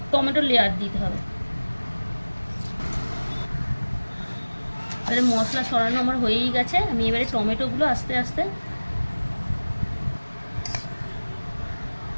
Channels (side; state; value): both; inverted; correlation -1.00